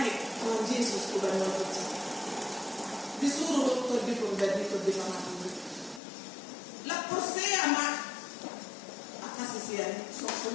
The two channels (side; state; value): right; drops out; at 6.0 s